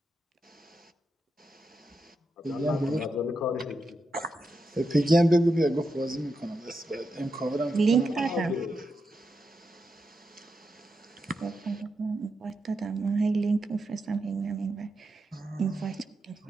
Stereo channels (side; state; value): both; normal; correlation 0.86